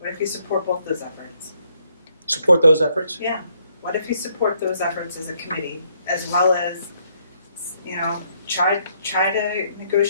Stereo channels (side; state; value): both; inverted; correlation -0.71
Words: if you support both those efforts? Support those efforts? Yeah. What if you support those efforts as a committee, as well as, try to